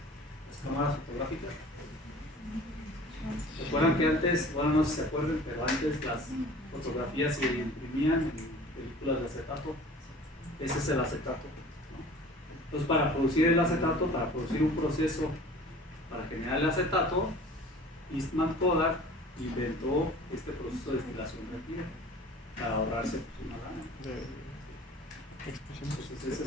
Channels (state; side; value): normal; both; correlation 0.45